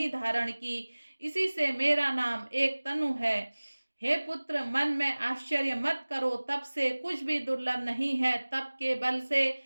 धारण की, इसी से मेरा नाम एक तनु है। हे पुत्र, मन में आश्चर्य मत करो, तब से कुछ भी दुर्लभ नहीं है। तप के बल से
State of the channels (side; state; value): both; inverted; correlation -1.00